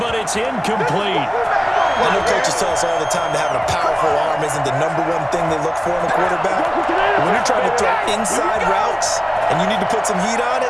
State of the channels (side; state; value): both; identical; correlation 1.00